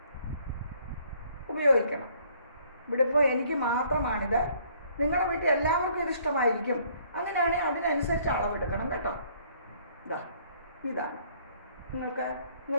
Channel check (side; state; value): both; inverted; correlation -0.62